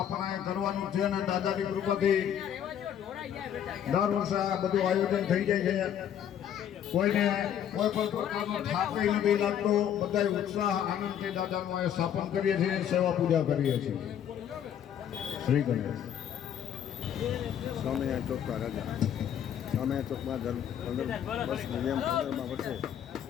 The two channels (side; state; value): right; quieter; 9.6 dB